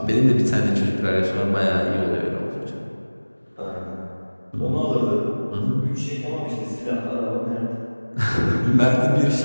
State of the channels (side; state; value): both; inverted; correlation -1.00